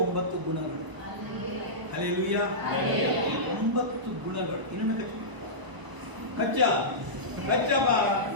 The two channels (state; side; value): late; left; 1.0 ms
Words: ಗುಣಗಳು. ಹಲ್ಲೆಲೂಯಾ. 9 ಗುಣಗಳು. ಇನ್ನೊಂದು ಕಚ್ಚಪ್ಪ,